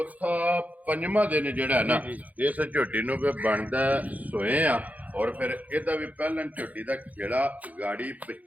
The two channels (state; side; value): late; left; 0.076 ms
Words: ਪੰਜਵਾਂ ਦਿਨ ਜਿਹੜਾ ਹੈ ਨਾ ਇਸ ਝੋਟੀ ਨੂੰ ਵੀ ਬਣਦਾ ਸੋਏ ਆ ਔਰ ਫਿਰ ਇਹਦਾ ਵੀ ਪਹਿਲਾਂ ਝੋਟੀ ਦਾ ਖੇੜਾ ਗਾੜੀ